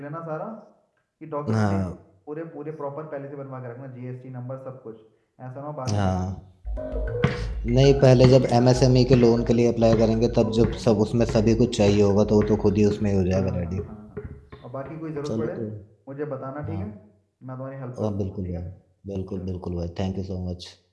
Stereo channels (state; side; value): identical; both; correlation 1.00